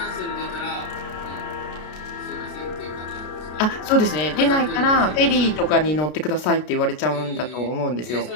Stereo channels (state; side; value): late; right; 33 ms